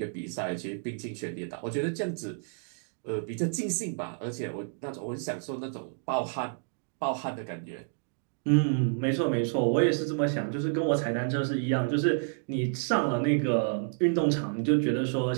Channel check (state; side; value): silent; left; digital silence